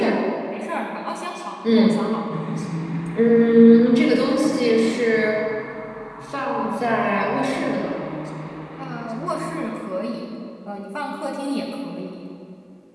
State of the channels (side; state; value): both; identical; correlation 1.00